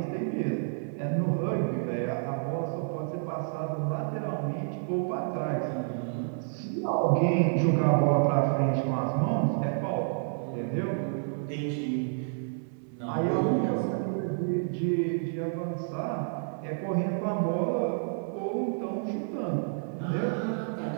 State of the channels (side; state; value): left; silent; 58 dB below the other